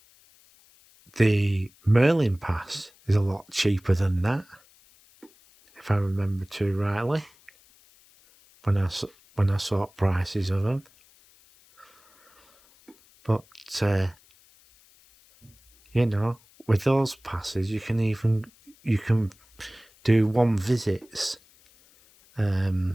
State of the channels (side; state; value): left; noise; hiss, 29 dB below the sound